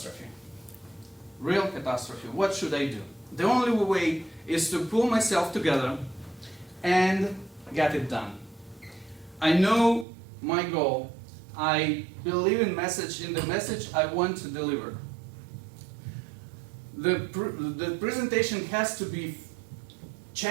real catastrophe. What should I do? The only way is to pull myself together and get it done. I know my goal. I believe in the message I want to deliver. The presentation has to be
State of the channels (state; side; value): drops out; left; at 10.1 s